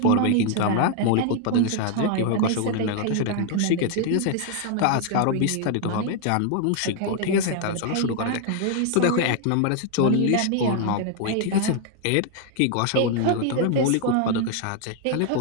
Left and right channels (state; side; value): different; both; correlation 0.00